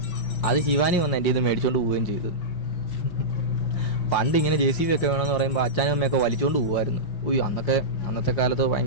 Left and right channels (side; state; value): right; late; 5.6 ms